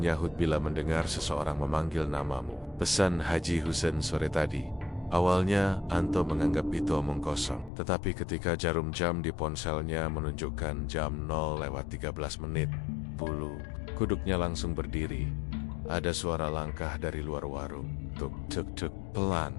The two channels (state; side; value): drops out; right; at 7.7 s